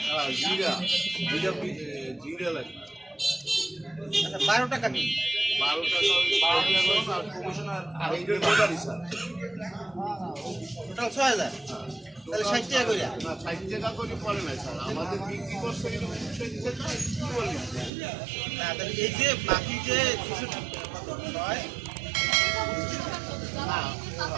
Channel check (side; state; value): left; drops out; at 17.9 s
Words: জিরা জিরা লাগে। আচ্ছা 12 টাকা কি 12 টাকা আর কমিশনার আর এইটার ব্যাপারই স্যার। টোটাল 6000, তাহলে 60 টাকা করে। না 60 টাকা করে পড়ে না স্যার, আমাদের বিক্রি করছে এটা 60 টাকা কি বলি না তাহলে এই যে বাকি যে 66 হয় না,